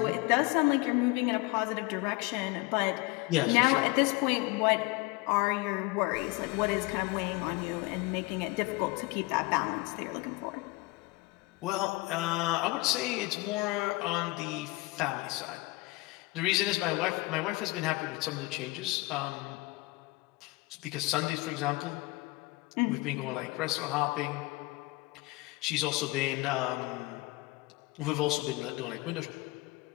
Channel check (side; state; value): right; quieter; 22.9 dB